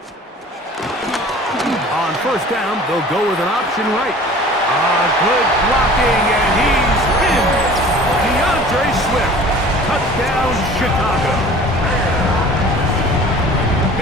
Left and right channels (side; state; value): both; normal; correlation 0.45